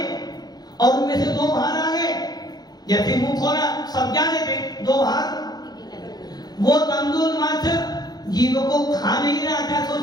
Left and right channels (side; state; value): right; late; 0.19 ms